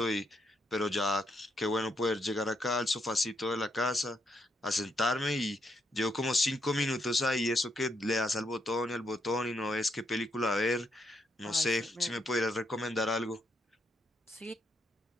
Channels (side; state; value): both; normal; correlation 0.77